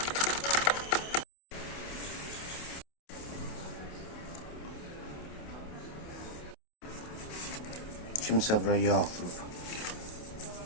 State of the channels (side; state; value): right; late; 28 ms